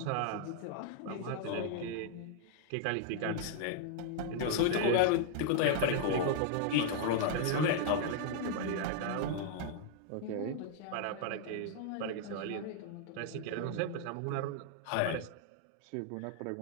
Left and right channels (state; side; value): different; both; correlation 0.00